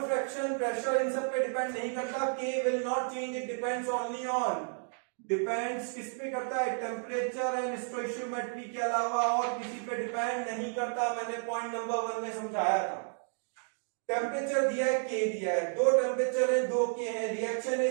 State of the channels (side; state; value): left; silent; 56 dB below the other